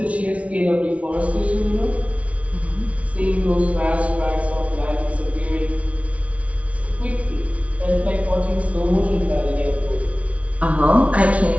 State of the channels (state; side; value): late; left; 0.065 ms